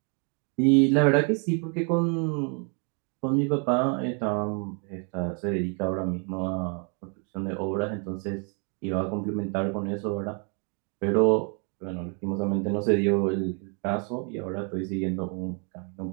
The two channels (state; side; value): quieter; left; 37.8 dB